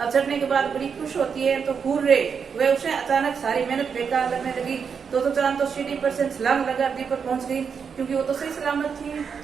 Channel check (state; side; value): quieter; left; 6.4 dB